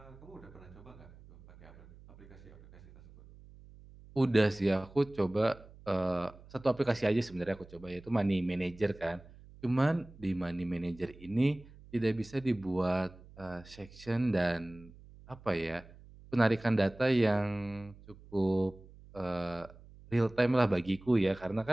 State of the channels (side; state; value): right; noise; hum, 21 dB below the sound